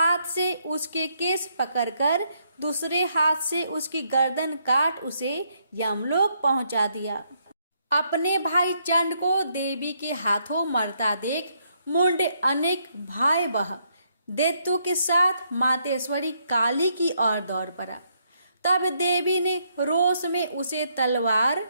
से उसके केस पकड़कर दूसरे हाथ से उसकी गर्दन काट उसे यमलोक पहुंचा दिया। अपने भाई चंड को देवी के हाथों मरता देख मुंड अनेक भयावह दैत्यों के साथ मातेश्वरी काली की ओर दौड़ पड़ा। तब देवी ने रोष में उसे तलवार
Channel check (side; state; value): both; inverted; correlation -0.74